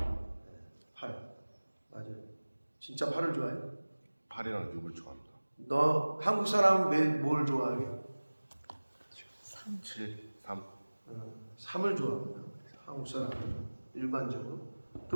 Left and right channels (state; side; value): inverted; both; correlation -1.00